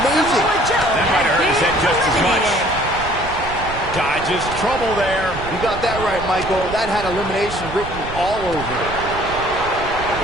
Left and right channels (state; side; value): noise; right; rumble, 10 dB below the sound